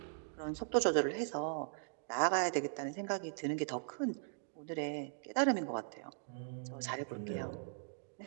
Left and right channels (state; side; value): silent; left; digital silence